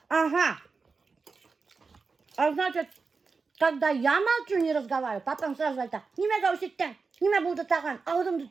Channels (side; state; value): left; quieter; 4.6 dB